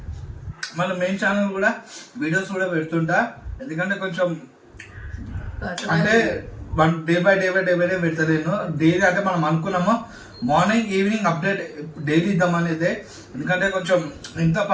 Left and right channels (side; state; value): both; identical; correlation 1.00